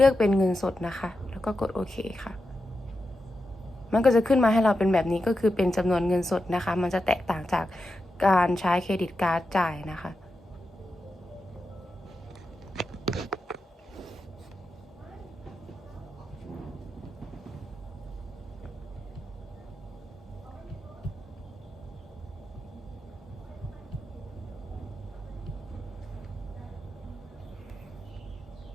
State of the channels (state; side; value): normal; both; correlation 0.89